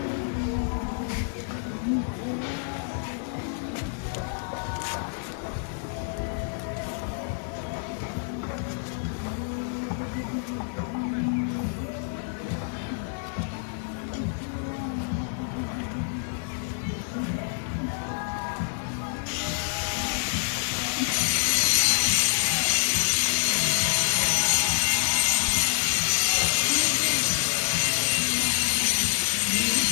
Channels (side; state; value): right; silent; digital silence